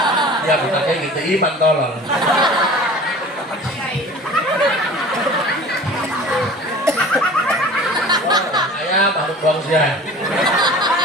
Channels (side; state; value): both; normal; correlation 0.42